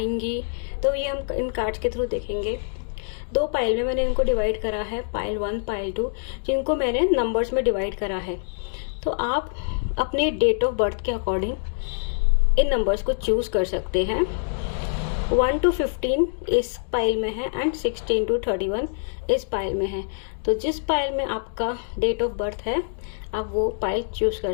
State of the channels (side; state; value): right; silent; digital silence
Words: तो ये हम इन कार्ड्स के थ्रू देखेंगे। दो पाइल में मैंने इनको डिवाइड करा है, पाइल 1 पाइल 2, जिनको मैंने नंबर्स में डिवाइड करा है। तो आप अपने डेट ऑफ बर्थ के अकॉर्डिंग इन नंबर्स को चूज कर सकते हैं। 1 to 15 इस पाइल में है एंड 16 to 31 इस पाइल में है। तो जिस पाइल में आपका डेट ऑफ बर्थ है आप वो पाइल चूज